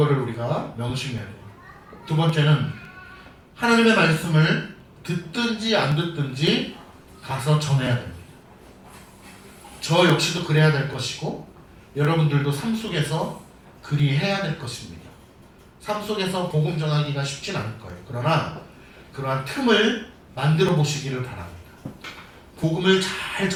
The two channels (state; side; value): identical; both; correlation 1.00